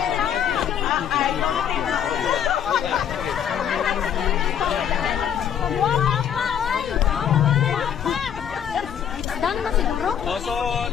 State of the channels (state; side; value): quieter; right; 8.9 dB